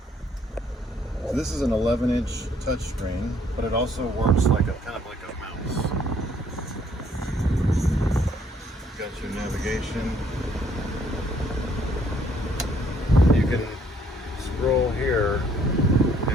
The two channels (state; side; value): normal; both; correlation 0.65